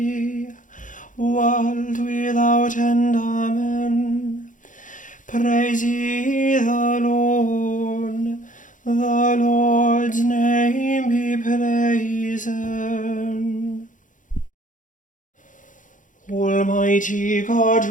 world without end. Amen. Praise ye the Lord. The Lord's name be praised. Almighty God,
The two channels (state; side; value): late; right; 0.37 ms